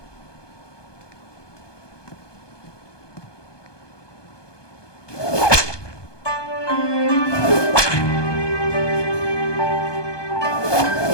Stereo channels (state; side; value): late; right; 1.2 ms